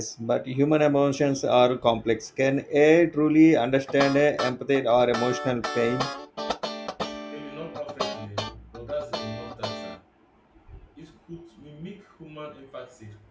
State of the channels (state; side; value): identical; both; correlation 1.00